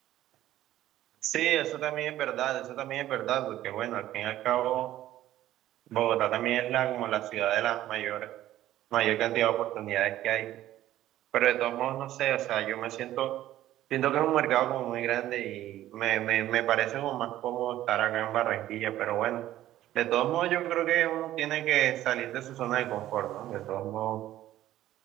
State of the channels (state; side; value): quieter; left; 13.7 dB